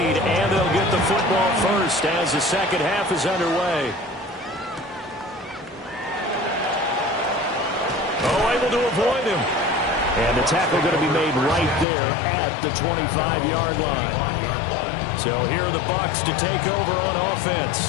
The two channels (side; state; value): right; drops out; at 11.9 s